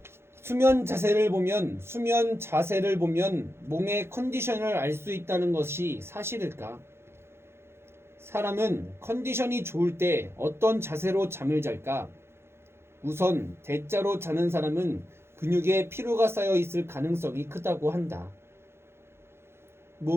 수면 자세를 보면 몸의 컨디션을 알 수 있다는 것이 사실일까? 사람은 컨디션이 좋을 때 어떤 자세로 잠을 잘까? 우선 대자로 자는 사람은 근육에 피로가 쌓여 있을 가능성이 크다고 한다.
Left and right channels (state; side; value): late; left; 0.12 ms